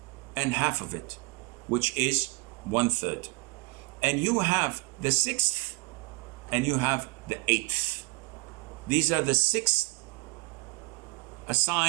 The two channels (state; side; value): quieter; left; 28.0 dB